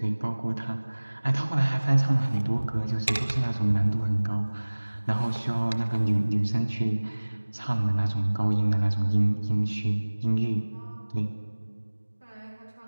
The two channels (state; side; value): inverted; both; correlation -1.00